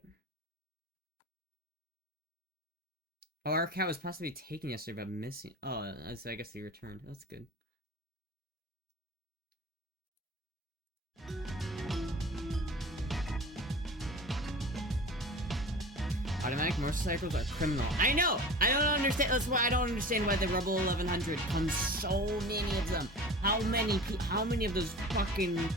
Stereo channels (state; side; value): normal; both; correlation 0.36